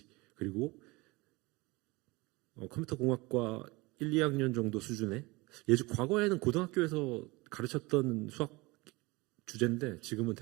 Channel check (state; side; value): quieter; left; 23.8 dB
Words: 그리고 컴퓨터 공학과 1, 2학년 정도 수준의 과거에는 고등학교에서 가르쳤던 수학 주제인데 지금은